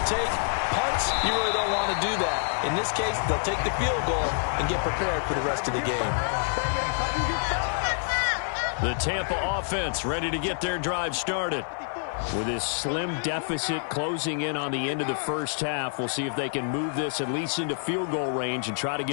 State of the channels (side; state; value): right; silent; 60 dB below the other